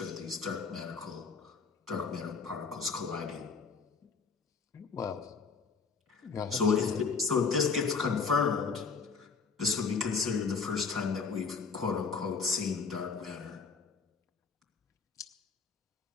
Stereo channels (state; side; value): quieter; right; 5.2 dB